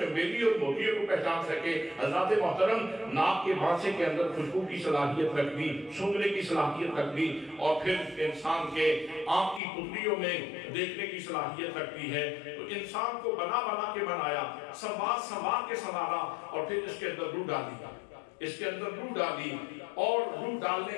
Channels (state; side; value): drops out; right; at 9.6 s